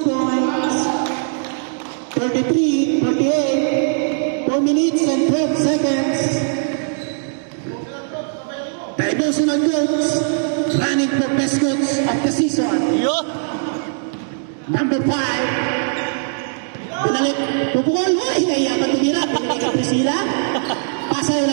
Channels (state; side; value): silent; left; digital silence